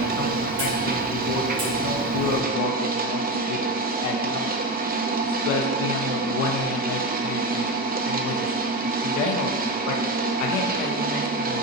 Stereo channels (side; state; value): both; normal; correlation 0.18